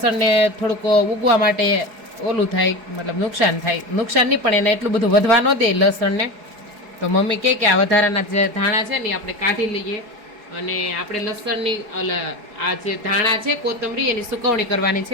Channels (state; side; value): late; left; 4.7 ms